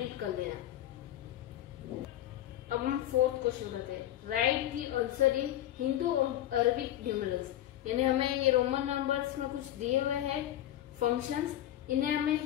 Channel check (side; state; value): right; quieter; 12.9 dB